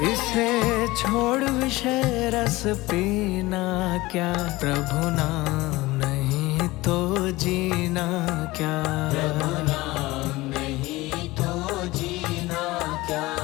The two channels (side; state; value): right; quieter; 19.9 dB